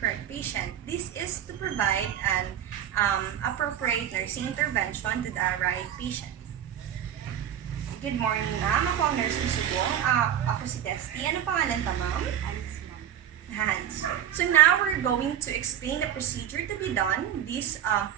patient. This is to provide an appropriate nursing intervention to the right patient. Good morning, ma'am. Ako ang nurse ni Subong. Ako si Testy. Ano pangalan pa, ma'am? Hans. So now we're going to explain the procedure to be done. This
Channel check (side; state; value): left; quieter; 10.5 dB